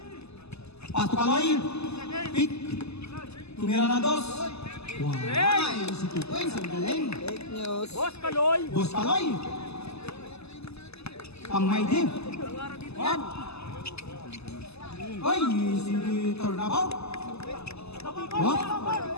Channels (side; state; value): right; late; 0.79 ms